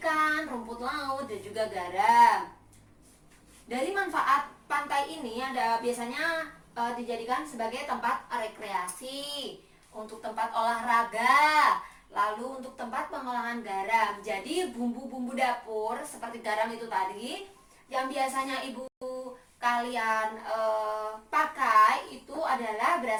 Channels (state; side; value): identical; both; correlation 1.00